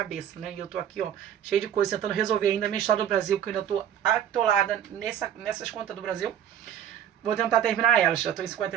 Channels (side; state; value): left; quieter; 9.9 dB